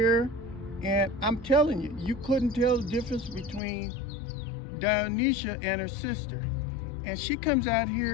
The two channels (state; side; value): drops out; right; at 3.6 s